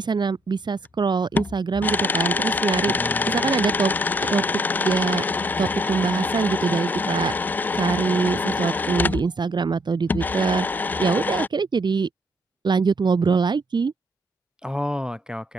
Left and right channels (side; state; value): both; normal; correlation 0.68